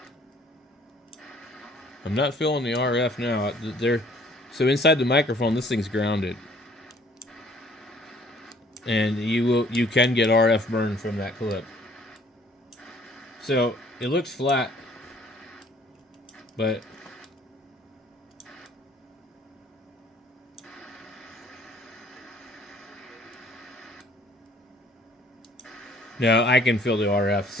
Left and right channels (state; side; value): normal; both; correlation 0.58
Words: I'm not feeling the RF now. So inside the microphone, this thing's grounded, and you can get RF burn from that clip. So it looks flat, but no, I can feel the RF.